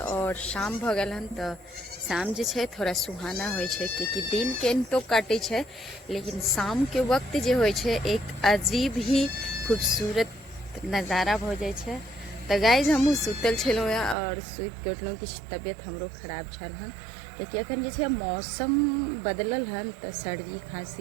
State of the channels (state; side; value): drops out; left; at 14.2 s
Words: शाम भ गेल हन। तो शाम जे छै थोड़ा सुहाना होइ छै क्योंकि दिन के तो काटे छै, लेकिन शाम के वक्त जे होइ छै एक अजीब ही खूबसूरत नज़ारा भ जाइ छै। तो गाइज हमहूँ सुतल छलहुँ और सुति के उठलहुँ। किछु तबियत हमरो खराब छल हन कियाकि अखन जे छै मौसम बदलल हन तो सर्दी